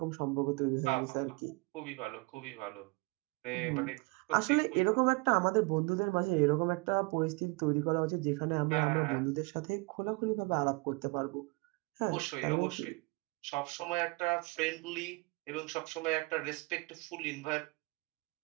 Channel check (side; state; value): left; quieter; 26.9 dB